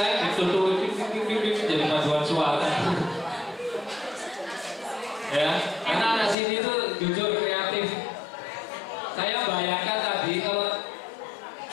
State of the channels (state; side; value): drops out; right; at 6.4 s